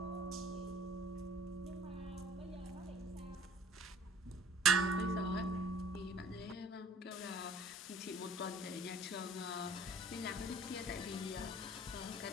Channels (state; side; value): normal; both; correlation 0.51